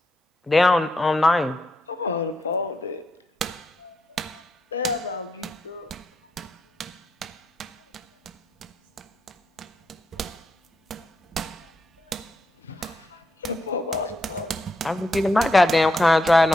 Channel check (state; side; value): normal; both; correlation 0.81